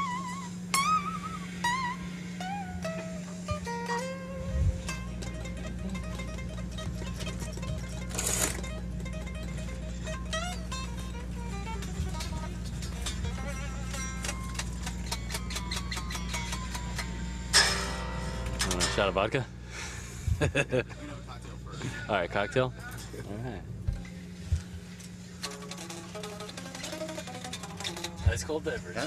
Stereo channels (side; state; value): both; identical; correlation 1.00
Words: Shot of vodka? All right, cocktail? All right. Ice cold beverage.